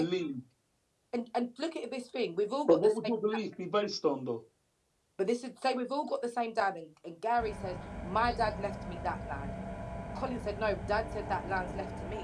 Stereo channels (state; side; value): identical; both; correlation 1.00